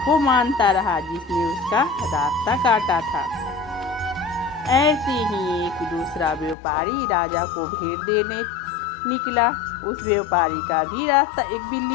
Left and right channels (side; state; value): right; drops out; at 6.6 s